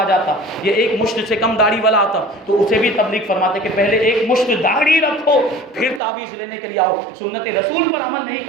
جاتا، یہ ایک مشت سے کم داڑھی والا آتا تو اسے بھی تبلیغ فرماتے کہ پہلے ایک مشت داڑھی رکھو پھر تعویذ لینے کے لیے آؤ، سنت رسول پر عمل نہیں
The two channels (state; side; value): drops out; left; at 6.0 s